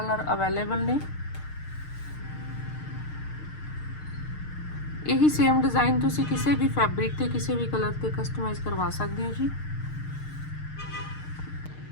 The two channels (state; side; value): late; right; 6.6 ms